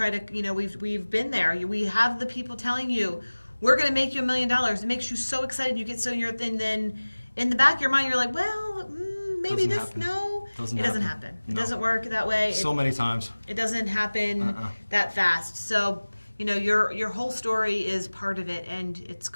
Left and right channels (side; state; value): both; inverted; correlation -1.00